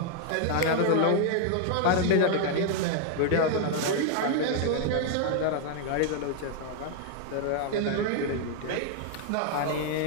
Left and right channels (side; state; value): both; different; correlation 0.00